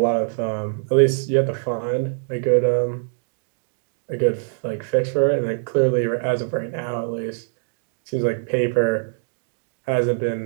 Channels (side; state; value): left; silent; digital silence